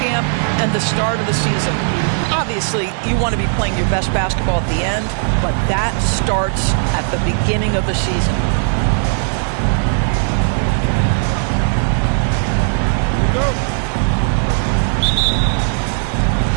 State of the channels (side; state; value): left; silent; 55 dB below the other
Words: and the start of the season. Obviously, you want to be playing your best basketball at the end, but that starts at the beginning of the season. Here we go.